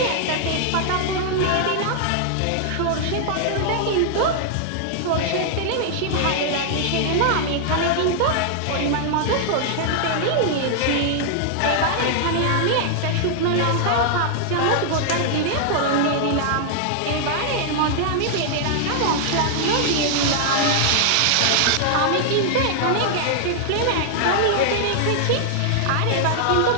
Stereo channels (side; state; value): both; different; correlation -0.01